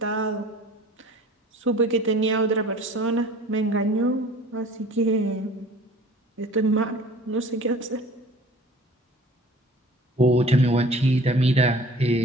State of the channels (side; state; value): both; normal; correlation 0.47